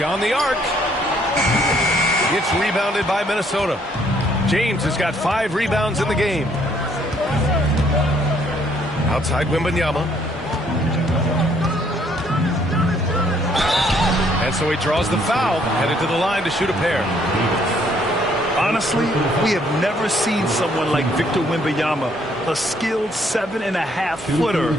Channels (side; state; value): both; normal; correlation 0.66